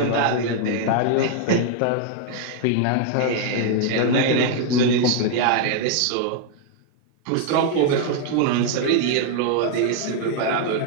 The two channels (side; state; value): both; different; correlation 0.00